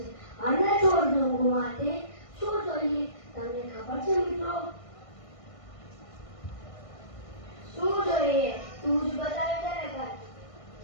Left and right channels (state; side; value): late; right; 1.5 ms